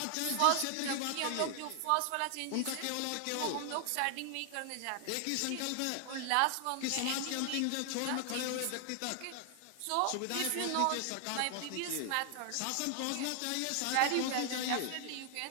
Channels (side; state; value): both; different; correlation 0.00